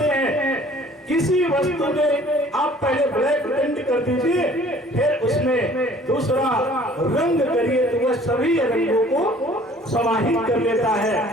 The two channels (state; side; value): normal; both; correlation 0.53